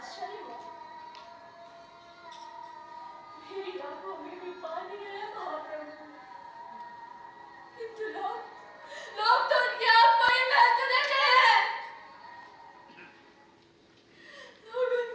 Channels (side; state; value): both; identical; correlation 1.00